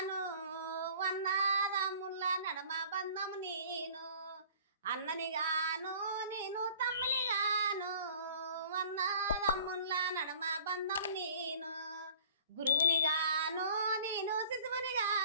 వన్నదమ్ముల నడమ బంధం నేను. అన్ననిగాను నేను తమ్మినిగాను వన్నదమ్ముల నడమ బంధం నేను. గురువునిగాను నేను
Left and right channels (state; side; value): inverted; both; correlation -0.49